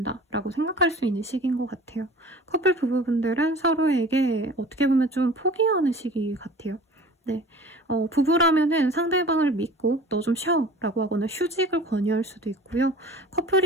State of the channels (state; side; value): normal; both; correlation 0.44